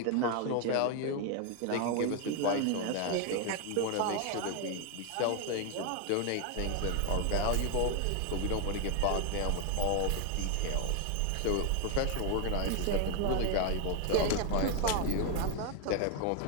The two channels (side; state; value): both; different; correlation 0.01